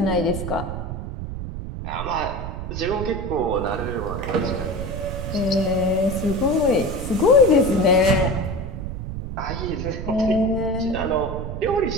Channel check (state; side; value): noise; right; rumble, 6 dB below the sound